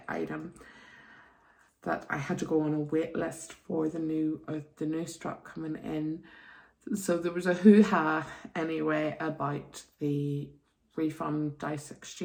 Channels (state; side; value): identical; both; correlation 1.00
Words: item, that I had to go on a wait list for the new strap coming in. So there was a hoo-ha anyway about the refund dice